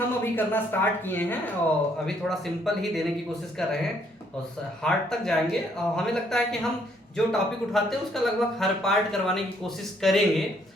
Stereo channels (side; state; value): both; normal; correlation 0.68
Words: अभी करना स्टार्ट किए हैं और अभी थोड़ा सिंपल ही देने की कोशिश कर रहे हैं और हार्ड तक जाएंगे। और हमें लगता है कि हम जो टॉपिक उठाते हैं उसका लगभग हर पार्ट करवाने की कोशिश करेंगे।